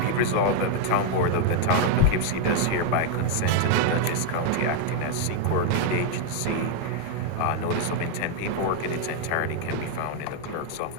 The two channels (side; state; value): both; different; correlation 0.00